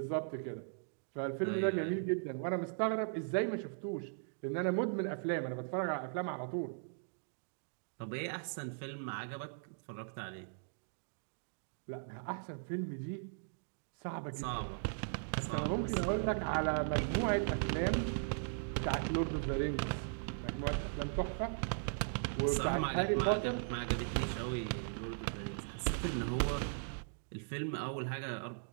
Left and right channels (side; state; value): left; silent; digital silence